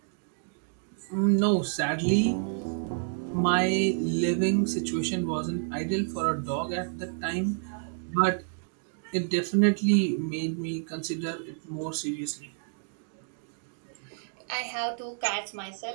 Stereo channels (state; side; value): silent; left; digital silence